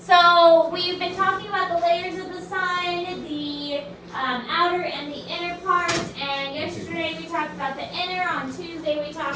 we've been talking about the layers of the sun, the outer and the inner part, and yesterday we talked about the inner, on Tuesday we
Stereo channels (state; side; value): identical; both; correlation 1.00